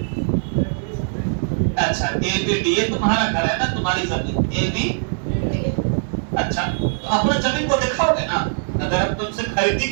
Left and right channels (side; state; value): left; silent; digital silence